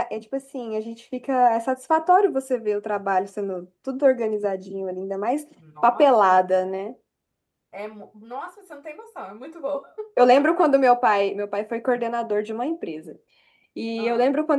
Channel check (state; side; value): identical; both; correlation 1.00